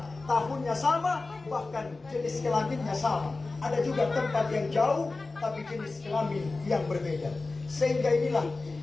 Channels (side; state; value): right; quieter; 3.5 dB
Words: tahunnya sama, bahkan jenis kelaminnya sama. Ada juga tempat yang jauh, tapi jenis kelamin yang berbeda. Sehingga inilah